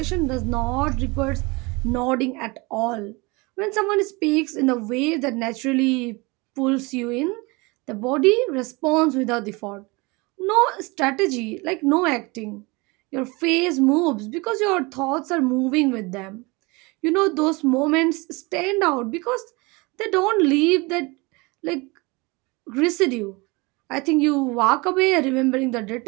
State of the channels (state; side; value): quieter; left; 25.9 dB